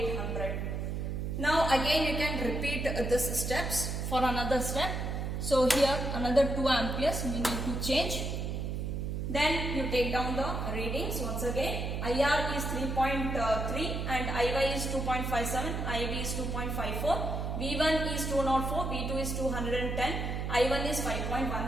Now again you can repeat this steps for another step. So here another 2 amperes we need to change. Then you take down the readings once again. IR is 3.3 and IY is 2.57, IB is 2.54, V1 is 204, V2 is 210, I1 is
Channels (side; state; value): right; noise; hum, 2 dB below the sound